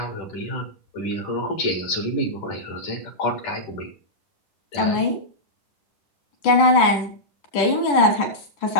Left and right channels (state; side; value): late; right; 9.5 ms